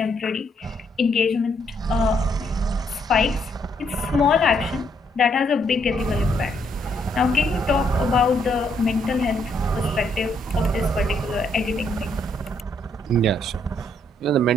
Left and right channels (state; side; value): normal; both; correlation 0.72